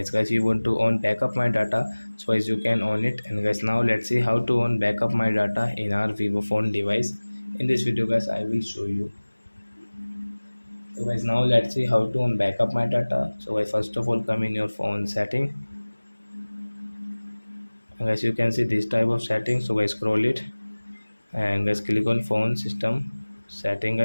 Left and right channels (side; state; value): both; inverted; correlation -1.00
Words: Guys, you want to own backup my data, so as you can own it. And guys, now let's see how to own backup my data in our vivo phone device. In this video guys, I will show you. So guys, now let's see how to own backup my data. So guys, first of all, come in your phone setting. And guys, you can see this type of setting. So guys, scroll it and guys, click on phone system setting.